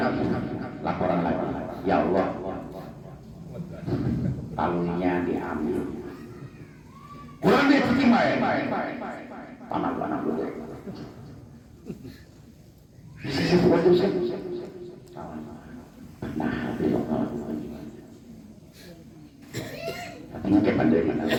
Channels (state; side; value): identical; both; correlation 1.00